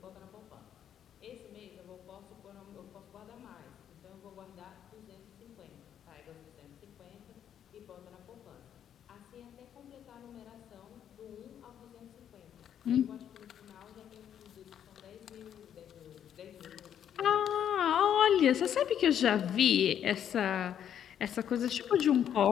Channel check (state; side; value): quieter; right; 9.5 dB